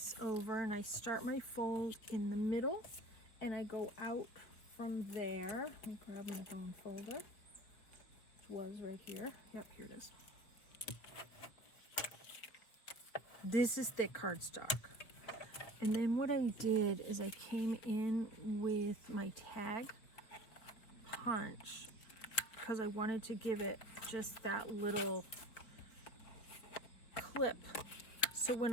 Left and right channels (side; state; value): right; late; 4.3 ms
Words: over, and I start my fold in the middle and I go out from there. Let me grab my bone folder. It was right here. Yep, here it is. This is thick cardstock. And then what I did is I came in with my tag punch because I wanted to give it just that little clip. So when